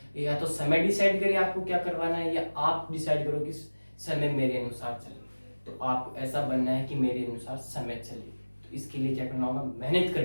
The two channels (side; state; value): both; inverted; correlation -1.00